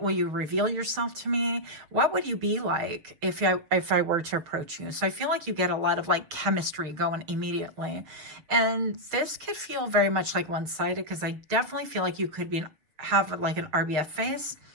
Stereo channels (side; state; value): left; late; 6.9 ms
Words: you reveal yourself to me? What would you be like if I were to approach you? So I feel like you get a lot of like chemistry going immediately. And this could feel very much like one-sided, because I definitely feel like you could have like an RBF face.